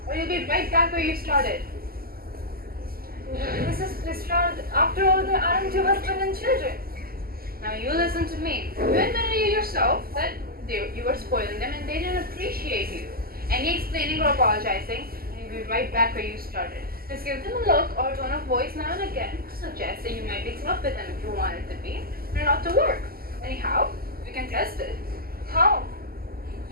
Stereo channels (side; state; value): left; late; 0.43 ms